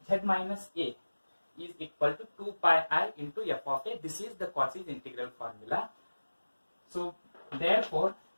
z minus a is equal to 2 pi I into f of a. This is the Cauchy's integral formula. So therefore,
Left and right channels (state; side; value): inverted; both; correlation -1.00